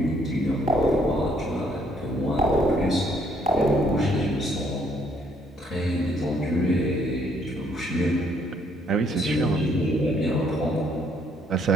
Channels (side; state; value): both; normal; correlation 0.67